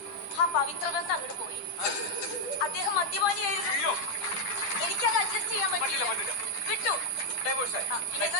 ആ പവിത്ര ബന്ധം അങ്ങോട്ട് പോയി. അദ്ദേഹം മദ്യപാനിയായിരുന്നു. എനിക്കത് അഡ്ജസ്റ്റ് ചെയ്യാൻ പറ്റില്ല. വിട്ടു. പിന്നെ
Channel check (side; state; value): right; late; 9.9 ms